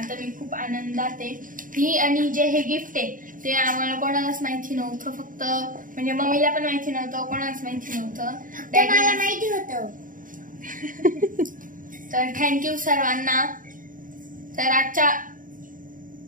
मी खूप आनंदात आहे. ही आणि जे हे गिफ्ट आहे ते आम्हाला कोणालाच माहिती नव्हतं, फक्त म्हणजे मम्मीला पण माहिती नव्हतं, कोणालाच माहिती नव्हतं, मला माहिती होतं. तर थँक्यू सर्वांना. तर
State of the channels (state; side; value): late; left; 0.39 ms